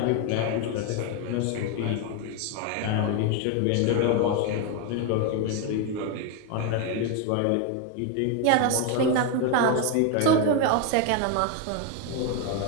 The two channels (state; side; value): different; both; correlation 0.02